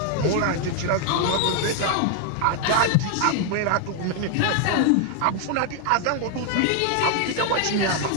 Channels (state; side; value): different; both; correlation 0.00